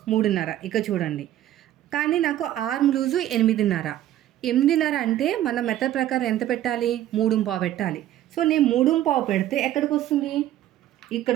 3.5, ఇక చూడండి. కానీ నాకు ఆర్మ్ లూజు 8.5. 8.5 అంటే మన మెథడ్ ప్రకారం ఎంత పెట్టాలి? 3.5 పెట్టాలి. సో నేను 3.5 పెడితే ఎక్కడికి వస్తుంది? ఇక్కడ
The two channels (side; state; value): left; quieter; 12.8 dB